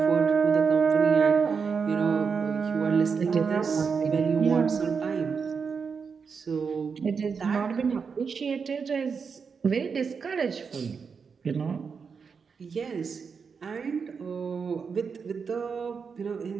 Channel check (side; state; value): left; quieter; 5.7 dB